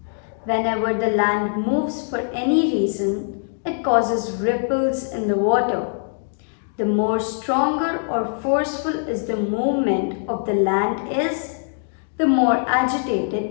Whenever the land moves for any reason, it causes ripples in the water. The more stronger or forceful is the movement of the land is, the more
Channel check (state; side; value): silent; right; digital silence